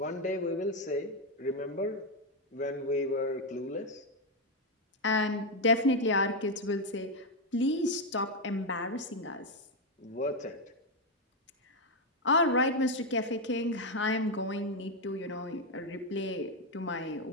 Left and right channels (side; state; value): both; normal; correlation 0.05